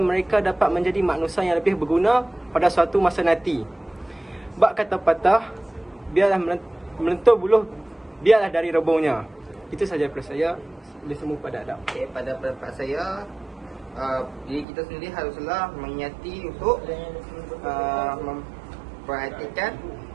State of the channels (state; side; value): drops out; left; at 14.7 s